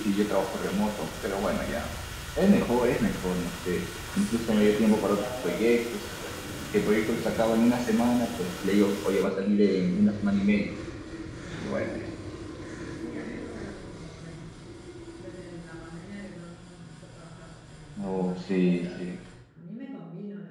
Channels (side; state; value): both; identical; correlation 1.00